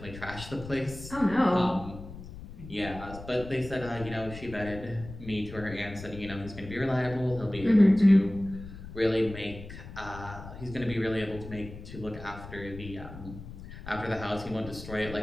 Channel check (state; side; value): noise; left; rumble, 13 dB below the sound